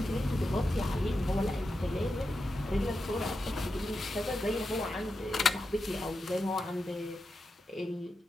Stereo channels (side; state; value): both; normal; correlation 0.88